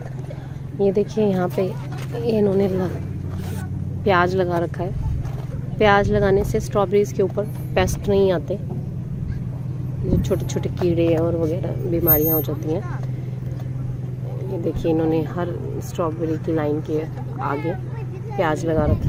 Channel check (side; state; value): both; identical; correlation 1.00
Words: ये देखिए यहाँ पे इन्होंने प्याज लगा रखा है। प्याज लगाने से स्ट्रॉबेरीज के ऊपर पेस्ट नहीं आते, जो छोटे छोटे कीड़े और वगैरह बीमारियाँ हो जाती हैं। ये देखिए इन्होंने हर स्ट्रॉबेरी की लाइन के आगे प्याज लगा